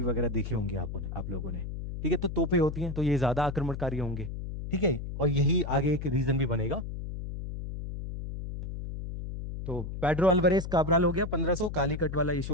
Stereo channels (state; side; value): noise; left; hum, 7 dB below the sound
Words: वगैरह देखी होंगी आप लोगों ने, ठीक है। तो तोपें होती हैं, तो ये ज्यादा आक्रमणकारी होंगे, ठीक है। और यही आगे एक रीजन भी बनेगा। तो पेड्रो अल्वारेज काब्राल हो गया 1500, कालीकट वाला इशू